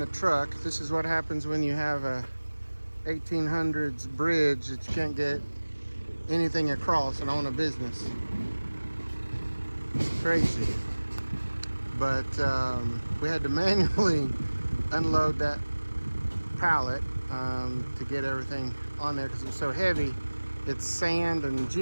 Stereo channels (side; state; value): both; inverted; correlation -1.00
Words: truck. This is what happens when you have a 1800s bridge that you can't get anything across and own a business. It's crazy. But we had to manually unload that pallet to get everything on there because it was so heavy. It's sand and